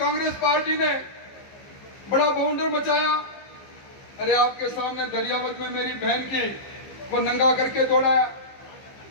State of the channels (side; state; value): right; late; 15 ms